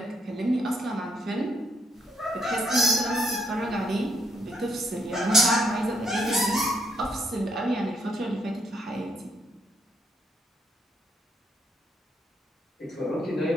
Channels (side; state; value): both; normal; correlation 0.74